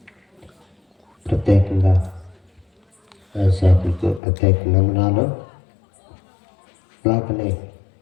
ప్రత్యేకంగా దైవసేవకులకు ప్రత్యేక వందనాలు. అలాగనే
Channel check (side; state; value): right; drops out; at 4.2 s